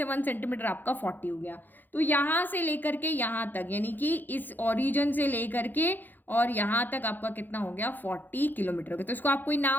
1 सेंटीमीटर आपका 40 हो गया। तो यहाँ से लेकर के यहाँ तक, यानी कि इस ओरिजिन से लेकर के और यहाँ तक आपका कितना हो गया, 40 किलोमीटर हो गया। तो इसको आप कोई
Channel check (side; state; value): right; late; 0.088 ms